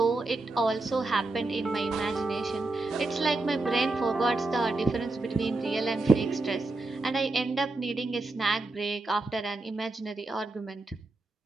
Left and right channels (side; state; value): left; quieter; 3.1 dB